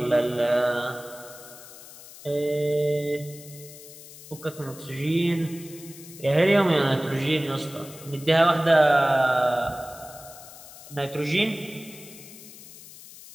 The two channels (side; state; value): left; noise; hiss, 17 dB below the sound